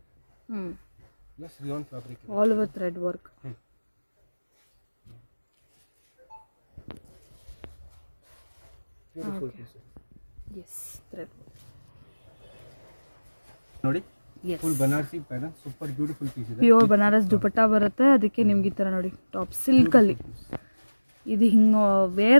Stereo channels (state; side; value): inverted; both; correlation -1.00